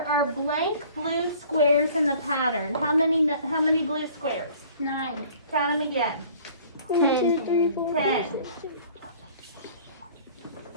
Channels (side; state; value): both; inverted; correlation -0.51